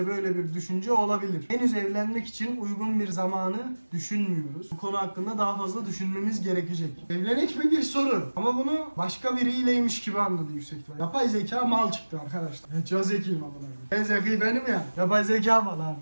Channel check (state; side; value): inverted; both; correlation -1.00